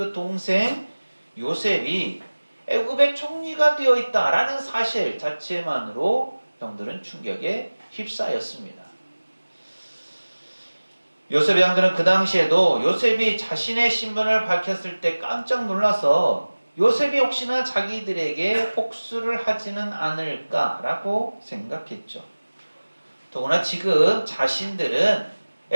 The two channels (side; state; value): both; inverted; correlation -1.00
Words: 동생 요셉이 애굽의 총리가 되어 있다라는 사실 자체만으로 형들은 충격에 휩싸였습니다. 요셉의 형들은 그 당시에도 요셉이 자신의 신분을 밝혔을 때 깜짝 놀라서 요셉이 혹시나 자기들에게 복수를 하지는 않을까라고 생각했죠. 더구나 지금 자신들은